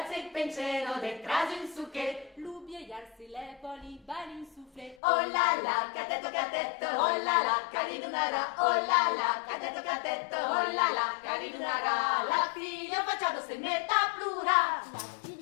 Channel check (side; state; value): right; drops out; at 5.0 s